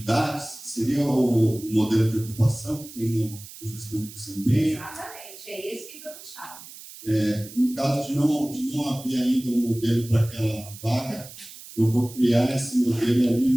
Seria o modelo de ocupação que tem no gestão de desempenho? Exatamente, é esse que foi puxado. No caso de não haver ainda um modelo para aquela vaga, eu vou criar esse modelo ali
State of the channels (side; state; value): right; noise; hiss, 16 dB below the sound